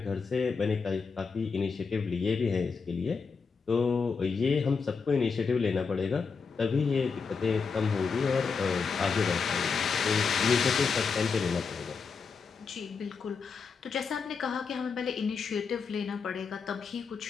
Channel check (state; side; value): quieter; right; 5.3 dB